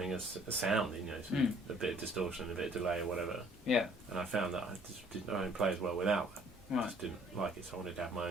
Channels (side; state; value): both; normal; correlation 0.58